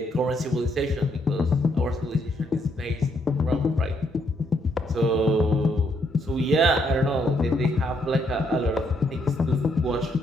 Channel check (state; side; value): normal; both; correlation 0.74